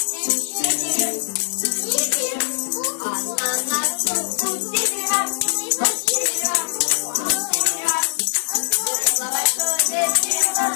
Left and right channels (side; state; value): right; silent; digital silence